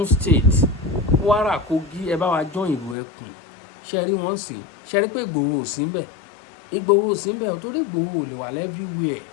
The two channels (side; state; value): right; drops out; at 3.0 s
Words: state, Kwara, Kogi, ẹ bá wa jọ́ ìrò ẹkùn. Ṣe rí wọ́n sìn, ṣe rí pé Ìgbòho ò sí ńbẹ̀, Ìgbòho ò sí ńbẹ̀ torí Ìgbòho ò lè wà everywhere,